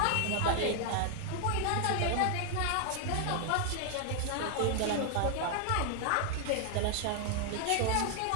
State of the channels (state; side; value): different; both; correlation 0.00